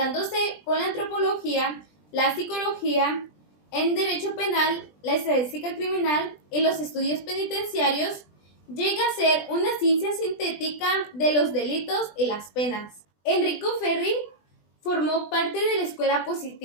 con la antropología, la psicología, en derecho penal, la estadística criminal y los estudios penitenciarios, llega a ser una ciencia sintética de los delitos y las penas. Enrico Ferri formó parte de la escuela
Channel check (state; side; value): late; right; 20 ms